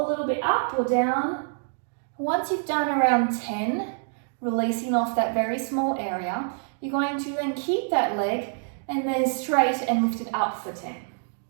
a little bit up or down. Once you've done around 10, releasing off that very small area, you're going to then keep that leg and then straight and lift it up for 10.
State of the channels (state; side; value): silent; left; digital silence